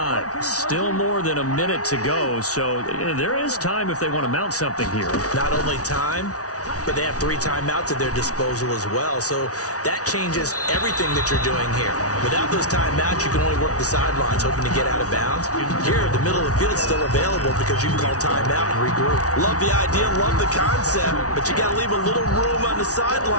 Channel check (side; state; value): right; late; 0.67 ms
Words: Still more than a minute to go, so there is time if they want to mount something here. Not only time, but they have 3 timeouts at their disposal as well, so that changes everything that you're doing here. Without those timeouts, you can only work the sidelines, hoping to get out of bounds. Here, the middle of the field is still available because you can call timeout and regroup. Love the idea, love the concept, but you got to leave a little room on the